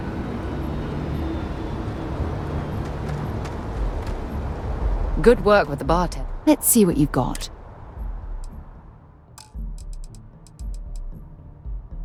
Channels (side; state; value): both; identical; correlation 1.00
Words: Good work with the bartender. Let's see what you've got.